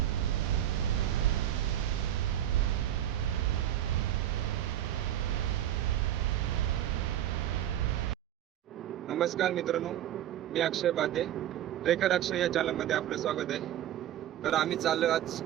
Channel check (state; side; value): quieter; left; 11.6 dB